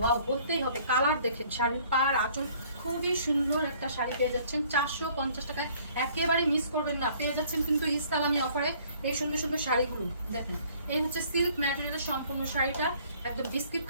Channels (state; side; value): inverted; both; correlation -0.58